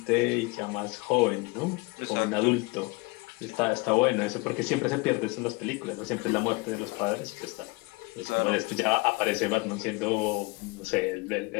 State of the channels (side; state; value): right; quieter; 25.7 dB